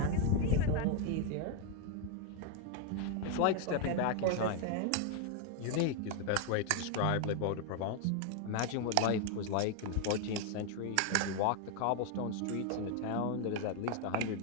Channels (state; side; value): different; both; correlation 0.01